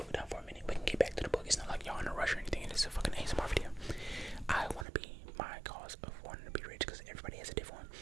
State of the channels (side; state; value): left; drops out; at 4.9 s